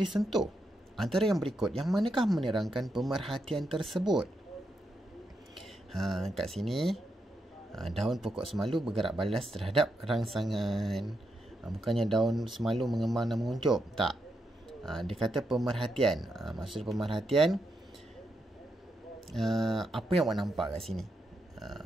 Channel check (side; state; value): both; normal; correlation 0.83